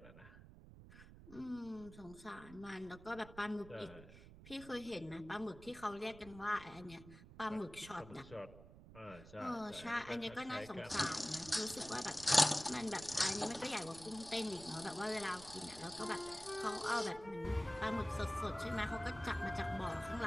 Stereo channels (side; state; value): right; noise; rumble, 17 dB below the sound